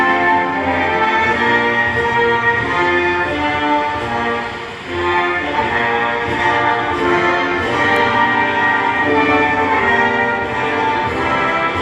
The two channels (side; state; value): both; identical; correlation 1.00